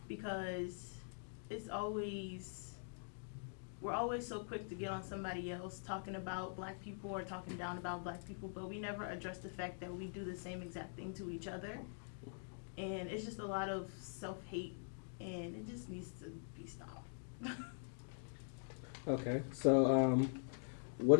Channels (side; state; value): right; silent; digital silence